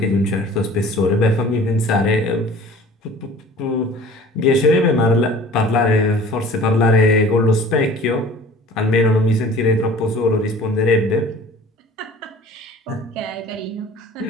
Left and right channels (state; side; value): normal; both; correlation 0.46